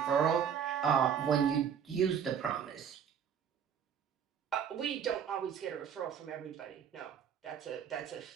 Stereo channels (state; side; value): quieter; left; 7.9 dB